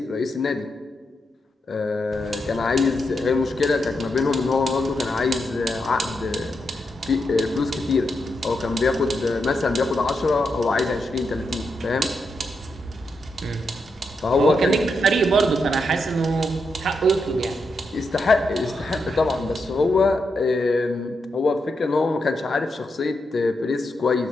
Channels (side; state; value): both; normal; correlation 0.84